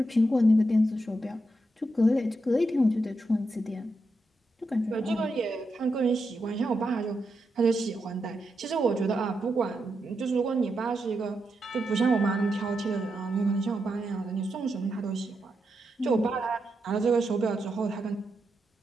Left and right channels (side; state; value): both; normal; correlation 0.85